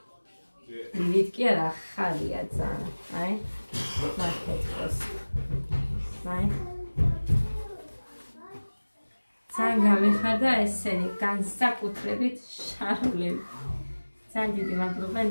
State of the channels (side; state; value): both; inverted; correlation -1.00